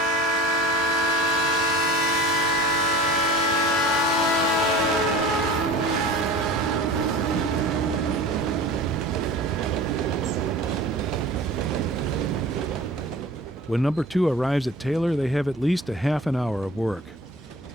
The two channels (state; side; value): normal; both; correlation 0.39